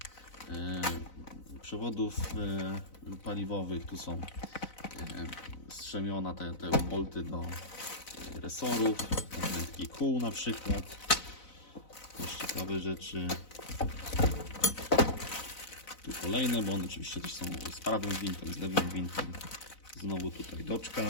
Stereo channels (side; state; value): right; late; 4.0 ms